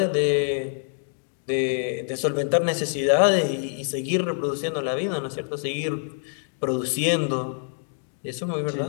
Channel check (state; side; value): silent; right; digital silence